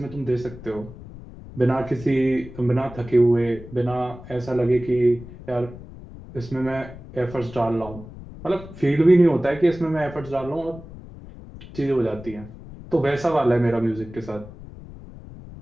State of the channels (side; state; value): left; noise; rumble, 16 dB below the sound